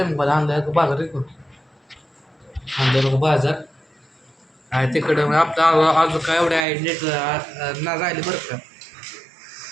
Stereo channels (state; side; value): drops out; left; at 6.7 s